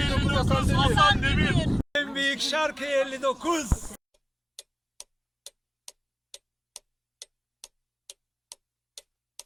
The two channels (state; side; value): identical; both; correlation 1.00